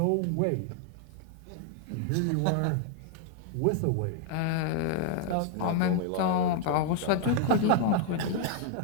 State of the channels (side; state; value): both; different; correlation 0.00